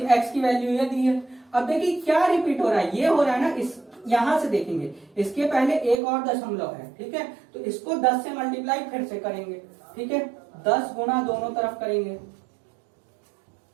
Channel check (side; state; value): left; drops out; at 6.0 s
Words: x की वैल्यू ये दी है, अब देखिए क्या रिपीट हो रहा है, ये हो रहा है ना, इस यहां से देखेंगे इसके पहले एक और दशमलव है। ठीक है, तो इसको 10 से मल्टीप्लाई फिर से करेंगे। ठीक है, 10 गुना दोनों तरफ करेंगे,